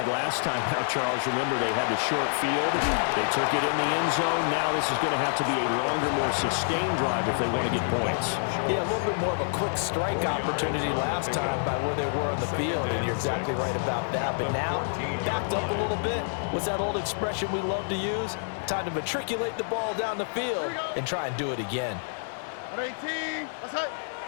last time out, Charles. Remember, they had the short field. They took it in the end zone. Now this is going to have to be a longer, more sustained drive if they want to get points. Yeah, a little bit more of a quick strike opportunity last time by where they were on the field, and you're exactly right about that. But now, backed up a little bit. What's that old expression we love to use? Time to matriculate the ball down the field and try and do it again. 18. Outside.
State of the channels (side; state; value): right; silent; digital silence